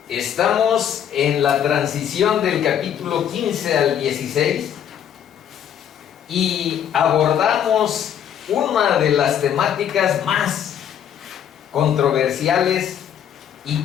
Estamos en la transición del capítulo 15 al 16 y abordamos una de las temáticas más controversiales y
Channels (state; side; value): quieter; right; 9.3 dB